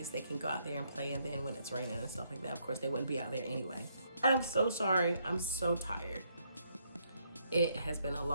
they can go out there and play. And then when it's raining and stuff like that, of course, they wouldn't be out there anyway. I'm so sorry. I'm so tired. It has been a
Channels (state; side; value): inverted; both; correlation -0.74